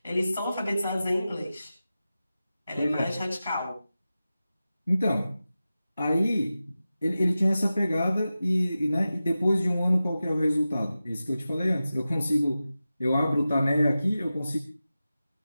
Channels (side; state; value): both; inverted; correlation -0.94